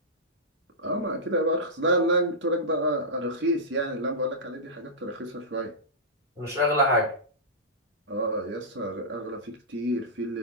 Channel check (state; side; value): normal; both; correlation -0.16